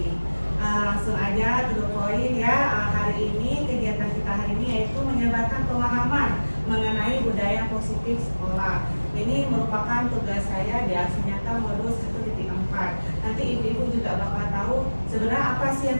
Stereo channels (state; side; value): inverted; both; correlation -1.00